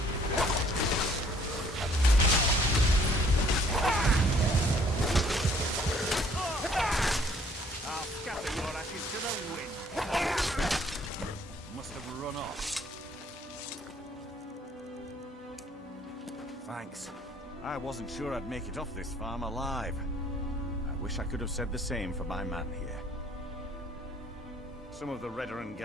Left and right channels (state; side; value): normal; both; correlation 0.60